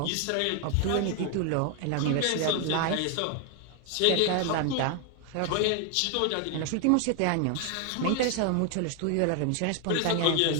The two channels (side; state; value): both; different; correlation 0.01